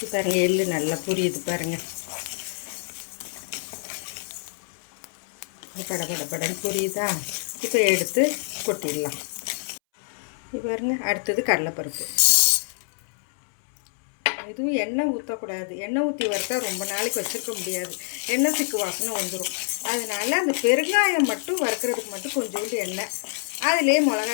பாருங்கள், எள்ளு நல்லா புரியுது பாருங்கள். படன்னு புரியுதா? இப்போ எடுத்து கொட்டிடலாம். இப்போ பாருங்க, அடுத்தது கடலைப்பருப்பு. எதுவும் எண்ணெய் ஊற்றக்கூடாது. எண்ணெய் ஊற்றி வறுத்தா ரொம்ப நாளைக்கு வச்சுருக்க முடியாது. எண்ணெய் சிக்கு வாசனை வந்துடும். அதனால் அந்த பெருங்காயம் மட்டும் வறுக்கிறதுக்கு மட்டும் கொஞ்சோண்டு எண்ணெய், அதிலே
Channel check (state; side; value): silent; right; 61 dB below the other